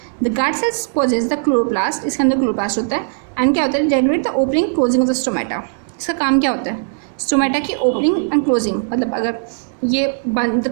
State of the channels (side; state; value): left; silent; 67 dB below the other